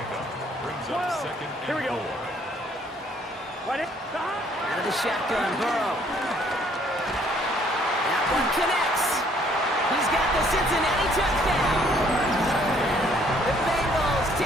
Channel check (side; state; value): both; normal; correlation 0.63